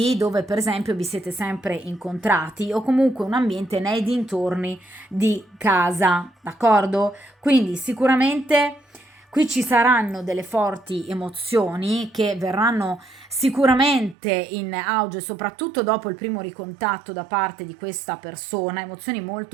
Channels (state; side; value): drops out; left; at 14.2 s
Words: dove per esempio vi siete sempre incontrati, o comunque un ambiente nei dintorni di casa, d'accordo? Quindi sicuramente Qui ci saranno delle forti emozioni che verranno sicuramente in auge, soprattutto dopo il primo ricontatto da parte di questa persona, emozioni